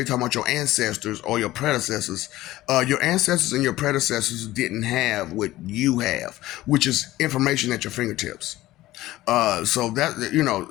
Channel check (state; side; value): quieter; right; 16.4 dB